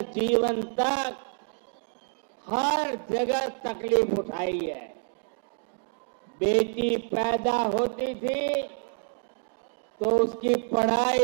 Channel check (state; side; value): silent; left; 59 dB below the other